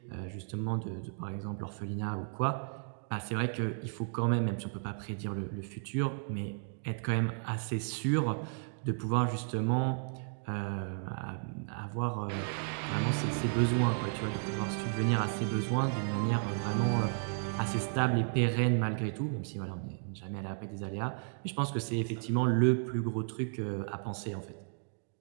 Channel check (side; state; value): left; silent; 55 dB below the other